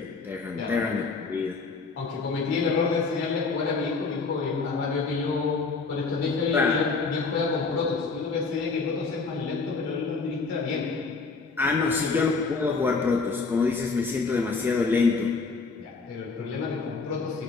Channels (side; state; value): right; quieter; 4.4 dB